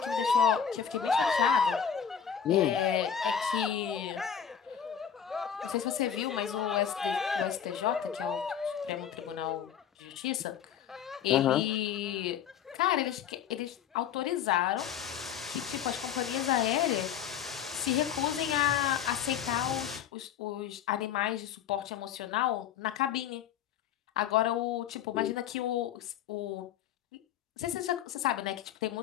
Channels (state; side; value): quieter; right; 8.6 dB